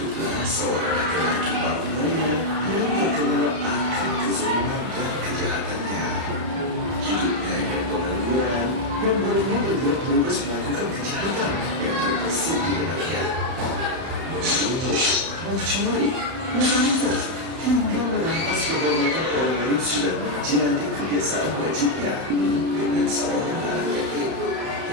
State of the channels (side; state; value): left; late; 31 ms